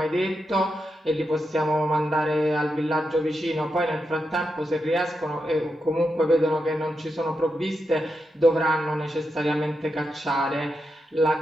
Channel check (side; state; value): both; normal; correlation 0.86